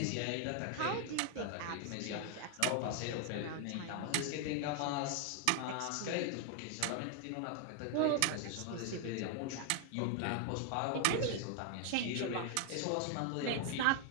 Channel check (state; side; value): different; both; correlation 0.00